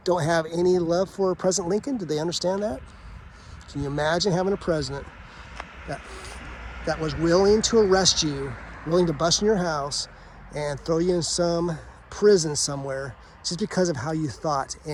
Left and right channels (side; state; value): both; identical; correlation 1.00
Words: don't have any love for President Lincoln? Do they understand that? Can you imagine having a president that was willing to arrest you, willing to bust in your house and throw you in some prison somewhere just because of how you thought,